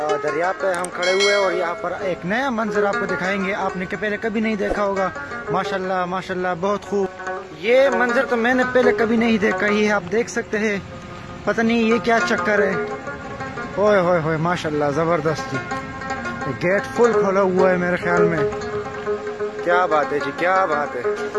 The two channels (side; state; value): both; identical; correlation 1.00